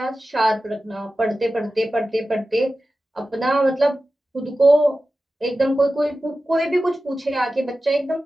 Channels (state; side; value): normal; both; correlation 0.94